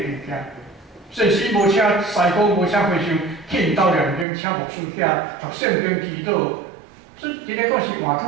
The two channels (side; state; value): left; drops out; at 4.2 s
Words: 件。即使无车西高，无车回乡，去因兜两边请牧师遐读圣经祈祷，所以真个讲是换